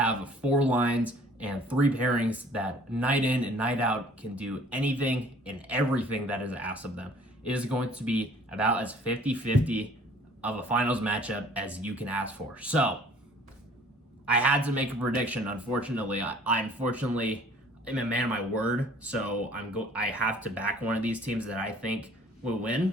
4 lines and 3 pairings that night in and night out can do anything and everything that is asked of them. It is going to be about as 50-50 of a finals matchup as you can ask for. So, I had to make a prediction. Unfortunately, I unfortunately am a man of my word, so I have to back one of these teams that I think will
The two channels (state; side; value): normal; both; correlation 0.53